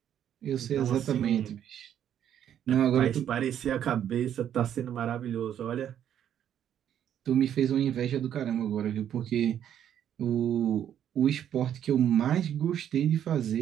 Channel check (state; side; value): quieter; left; 10.0 dB